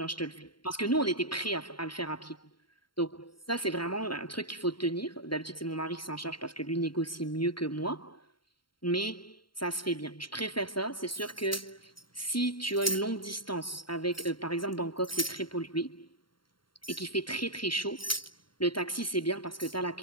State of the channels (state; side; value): late; right; 0.73 ms